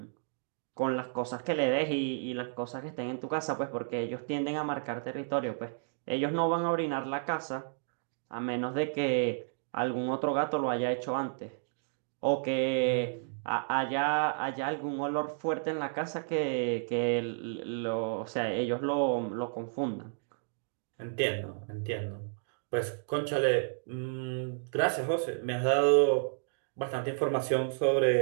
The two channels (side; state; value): left; silent; digital silence